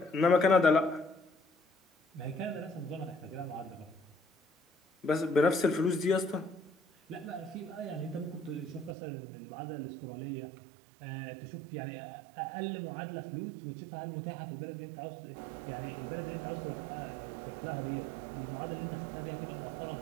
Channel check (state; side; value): drops out; left; at 9.0 s